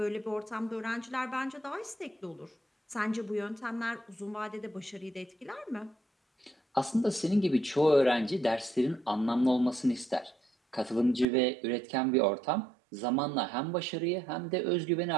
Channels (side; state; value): left; drops out; at 11.2 s